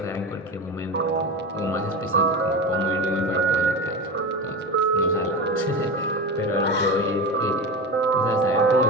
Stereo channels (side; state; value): both; normal; correlation 0.24